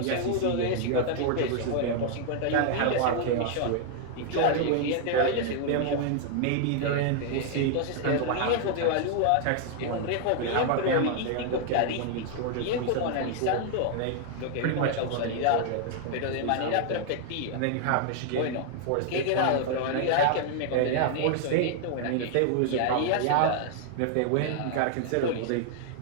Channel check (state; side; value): different; both; correlation 0.00